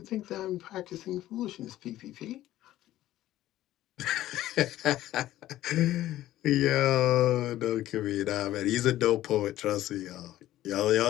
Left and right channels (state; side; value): quieter; right; 14.3 dB